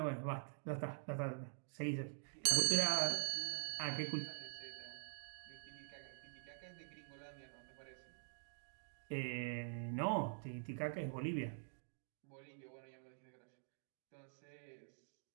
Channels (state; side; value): silent; left; digital silence